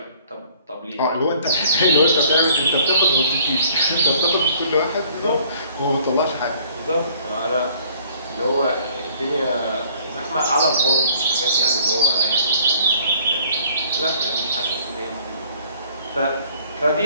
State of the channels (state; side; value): inverted; both; correlation -0.57